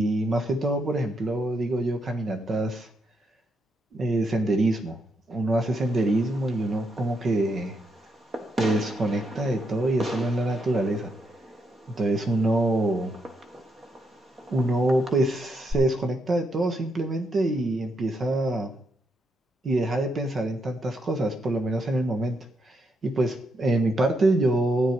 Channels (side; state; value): both; normal; correlation 0.80